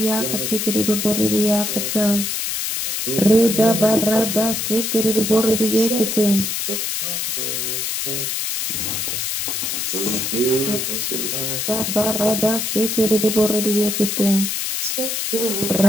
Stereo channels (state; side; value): noise; left; hiss, 1 dB below the sound